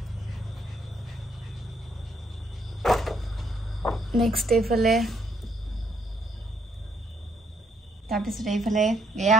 নেক্সট এইফালে তাৰপিছত এইফালে এয়া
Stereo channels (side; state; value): both; normal; correlation 0.71